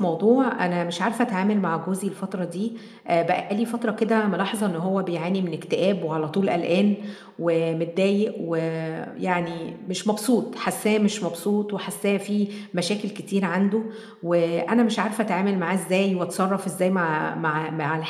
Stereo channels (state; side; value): identical; both; correlation 1.00